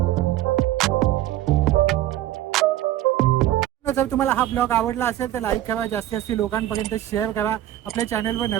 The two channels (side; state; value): left; quieter; 13.7 dB